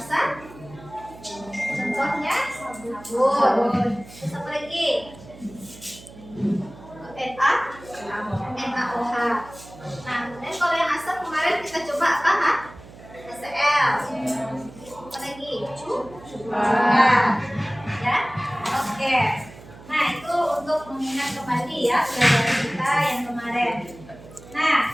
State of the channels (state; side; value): noise; right; hum, 19 dB below the sound